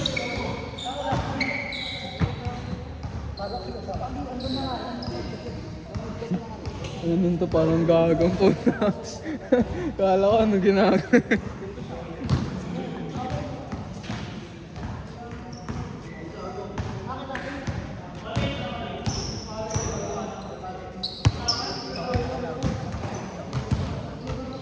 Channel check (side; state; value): both; identical; correlation 1.00